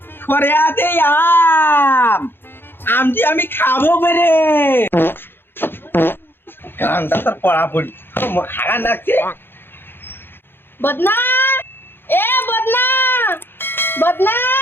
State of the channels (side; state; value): right; late; 0.10 ms